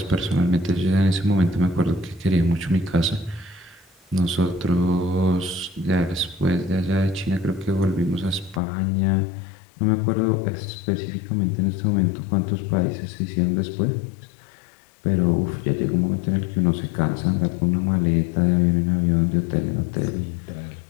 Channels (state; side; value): drops out; right; at 8.6 s